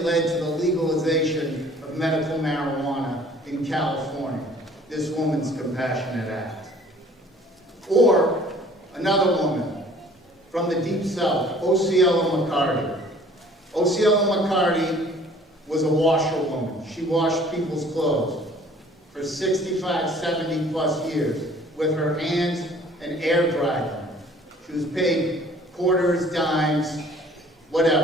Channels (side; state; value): both; normal; correlation 0.53